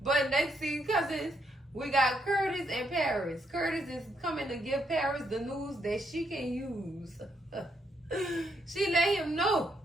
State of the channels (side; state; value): both; normal; correlation 0.76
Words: But next scene, cousins, we got Curtis and Paris. Curtis is coming to give Paris the news that she can use. She let him know.